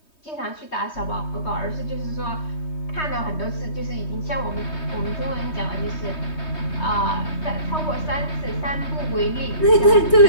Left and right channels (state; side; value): late; right; 3.2 ms